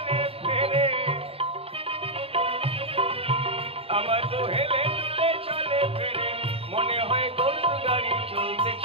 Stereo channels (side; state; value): left; late; 0.28 ms